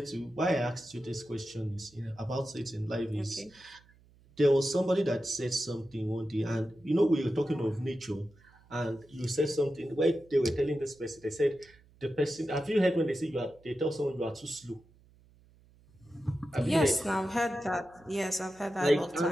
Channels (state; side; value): noise; right; hum, 28 dB below the sound